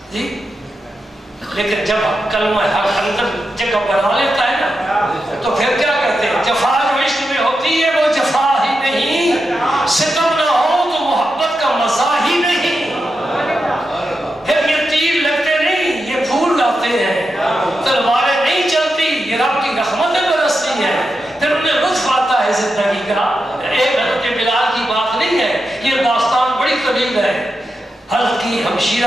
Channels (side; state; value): both; normal; correlation 0.88